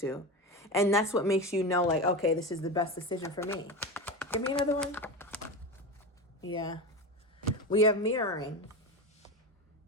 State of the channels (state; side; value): normal; both; correlation 0.22